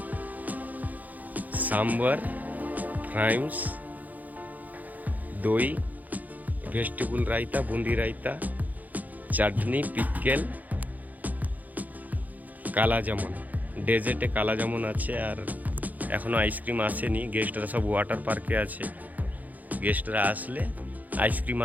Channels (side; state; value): left; late; 0.080 ms